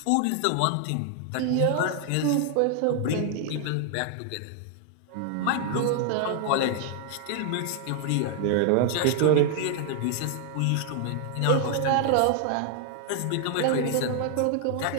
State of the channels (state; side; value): different; both; correlation 0.00